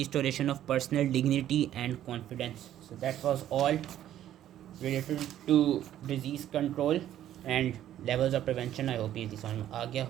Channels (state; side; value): quieter; left; 11.8 dB